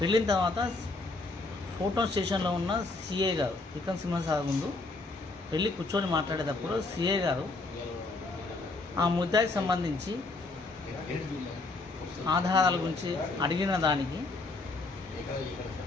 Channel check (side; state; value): right; quieter; 3.3 dB